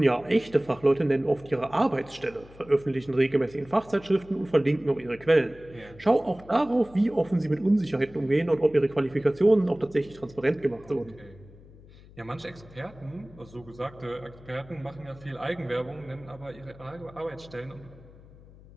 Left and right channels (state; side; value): noise; left; hum, 22 dB below the sound